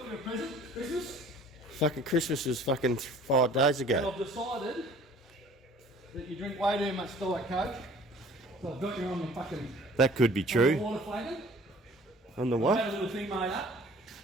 you a present, Christmas. Fucking Christmas was fucking 5 days And ago. I've decided that you drink way too much Diet Coke. So I've got you on the fucking... That could be On the true. water flagon. On the I've what? had a little thing made up.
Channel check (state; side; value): normal; both; correlation 0.50